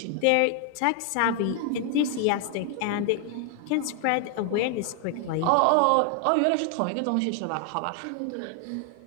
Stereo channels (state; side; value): different; both; correlation 0.00